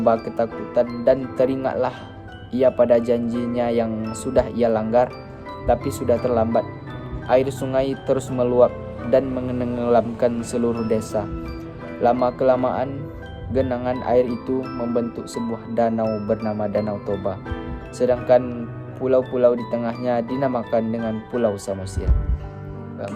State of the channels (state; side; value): identical; both; correlation 1.00